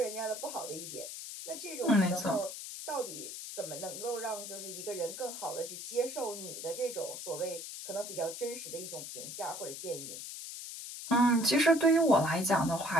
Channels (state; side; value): noise; left; hiss, 9 dB below the sound